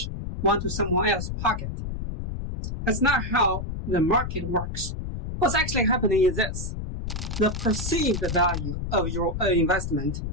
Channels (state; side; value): noise; left; rumble, 5 dB below the sound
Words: went to someone else's pocket. That's not how the market works. What's actually happening is this. The perceived value of your investment